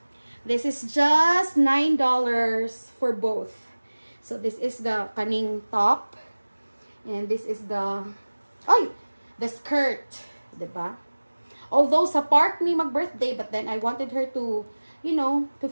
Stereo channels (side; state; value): both; inverted; correlation -1.00